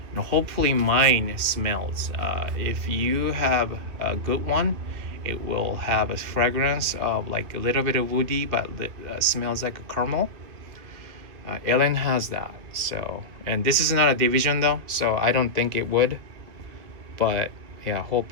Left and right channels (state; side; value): late; left; 2.3 ms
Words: And hopefully mine smells. If you have a good one, it will have a fragrance of like a little bit of woody, but smells like a caramel. Ellen has that. So, and this is not a division though, so I don't think it would, but yeah,